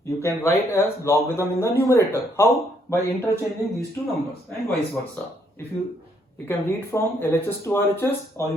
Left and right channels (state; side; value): normal; both; correlation 0.71